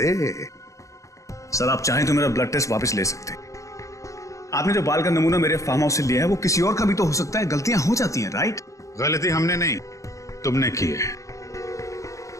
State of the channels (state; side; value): late; right; 0.15 ms